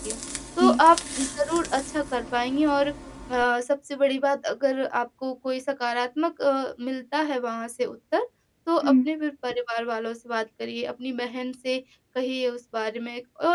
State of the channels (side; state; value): both; identical; correlation 1.00